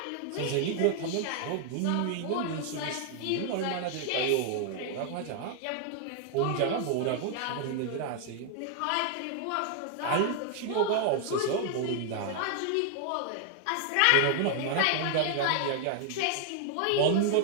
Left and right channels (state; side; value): different; both; correlation 0.00